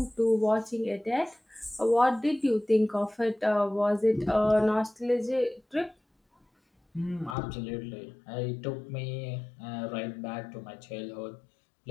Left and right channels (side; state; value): right; drops out; at 7.4 s